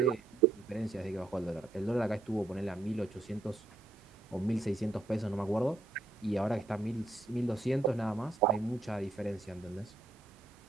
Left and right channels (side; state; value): left; quieter; 3.1 dB